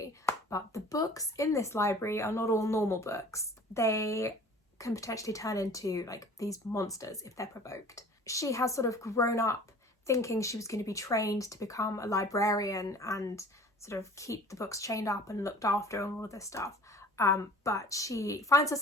But the books in this library are not all normal books. They can potentially turn into, like, these monsters if they're provoked. She has sort of grown up thinking she was going to be trained to become a librarian and sort of keep the books chained up and looked after and all of this stuff. But she finds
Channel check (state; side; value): normal; both; correlation 0.46